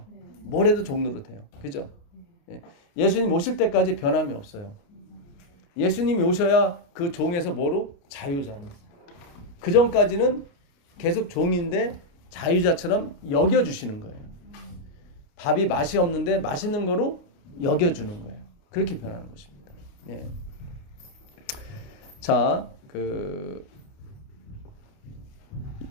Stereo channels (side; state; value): right; late; 29 ms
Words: 뭘 해도 종노릇 해요. 그죠? 예. 예수님 오실 때까지 변함이 없어요. 예수님이 오셔야 그 종에서 뭐로? 자유자로. 그 전까지는 계속 종인데 자유자처럼 여겨주시는 거예요. 밥이 맛이 없는데 맛있는 거로 여겨주는 거예요. 그렇게 변하는 것입니다. 네. 자,